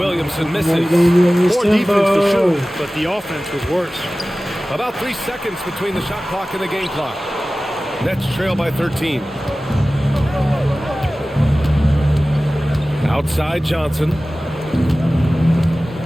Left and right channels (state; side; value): normal; both; correlation 0.97